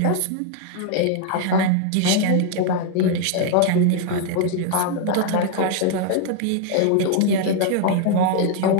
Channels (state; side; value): different; both; correlation 0.00